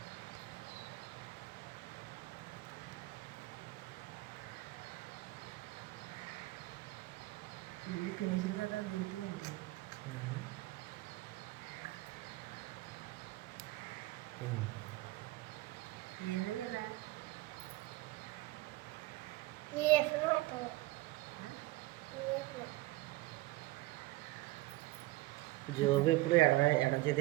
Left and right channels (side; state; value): left; quieter; 18.9 dB